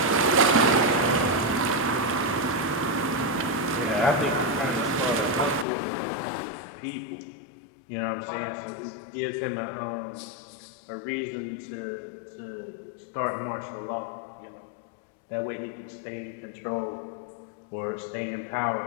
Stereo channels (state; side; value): drops out; right; at 5.7 s